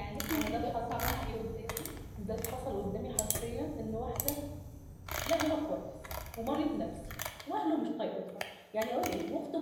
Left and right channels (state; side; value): identical; both; correlation 1.00